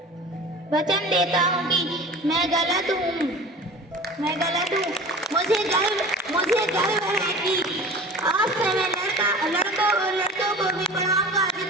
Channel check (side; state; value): both; normal; correlation 0.39